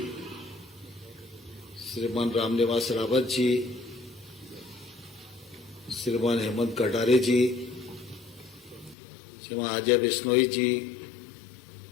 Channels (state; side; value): drops out; right; at 9.0 s